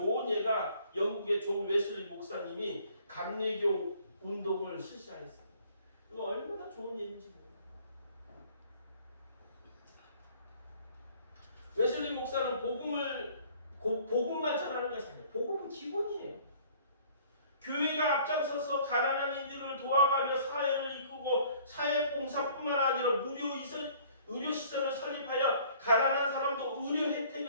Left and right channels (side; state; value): both; inverted; correlation -0.55